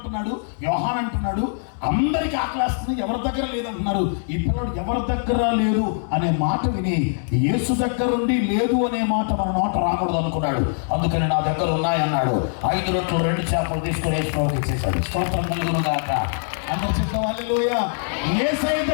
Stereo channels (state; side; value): silent; right; digital silence